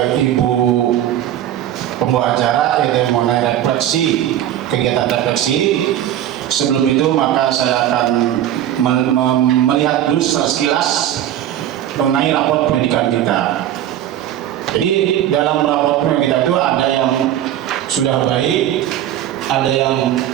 Ibu pembawa acara, yaitu mengenai refleksi, kegiatan refleksi. Sebelum itu maka saya akan melihat dulu sekilas mengenai raport pendidikan kita. Jadi dalam raport pendidikan kita itu ada yang sudah baik, ada yang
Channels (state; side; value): quieter; left; 11.7 dB